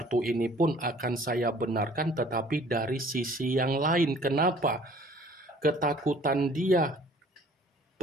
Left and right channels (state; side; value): normal; both; correlation 0.53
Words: ini pun akan saya benarkan tetapi dari sisi yang lain. Kenapa? Ketakutan dia